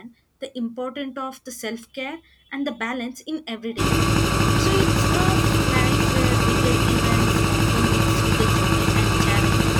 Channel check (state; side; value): identical; both; correlation 1.00